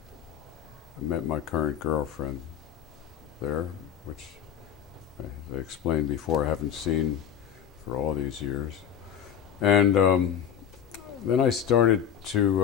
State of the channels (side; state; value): right; quieter; 8.9 dB